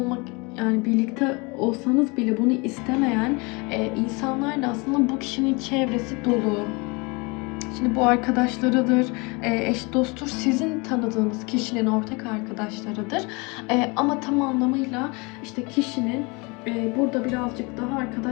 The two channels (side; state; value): right; quieter; 28.2 dB